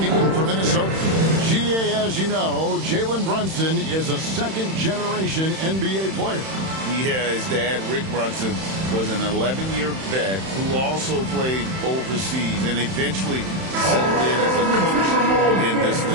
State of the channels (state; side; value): late; left; 31 ms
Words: for Minnesota. GA, as you know, Jalen Brunson is a second-generation NBA player. Yeah, his dad, Rick Brunson, was an 11-year vet who also played overseas and eventually settled in as a coach in this